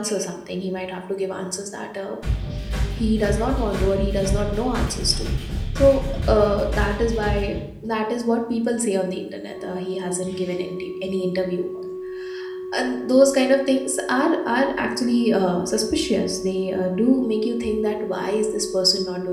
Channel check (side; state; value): both; identical; correlation 1.00